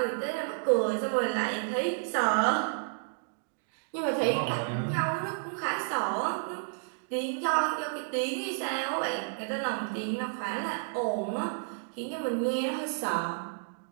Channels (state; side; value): silent; left; digital silence